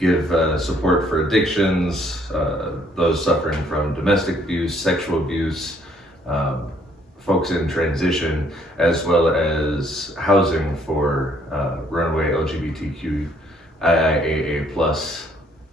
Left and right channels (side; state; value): both; normal; correlation 0.65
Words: support for addictions, those suffering from domestic abuse, sexual abuse, folks in transition, as well as housing for runaway LGBTQ IIAA plus